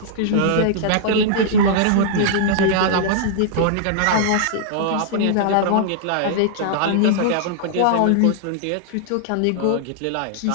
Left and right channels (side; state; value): both; different; correlation -0.01